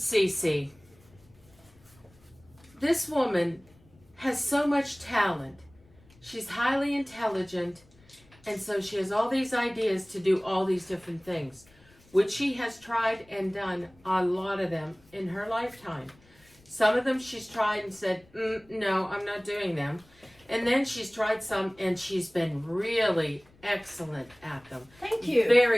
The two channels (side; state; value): left; noise; rumble, 29 dB below the sound